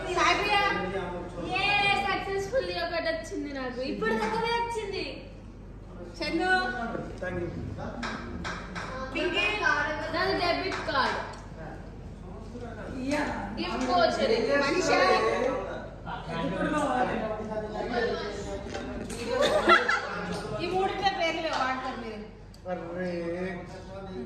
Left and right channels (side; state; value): both; identical; correlation 1.00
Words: సక్సెస్ఫుల్ ఒకటి వచ్చింది నాకు ఇప్పుడు దగ్గరే వచ్చింది. చందు నాది debit card gift voucher Manisha ఈ మూడింటి పేర్లు వాడతారు మీరు.